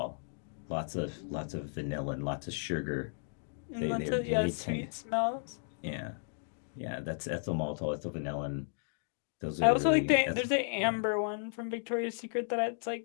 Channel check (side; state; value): right; silent; digital silence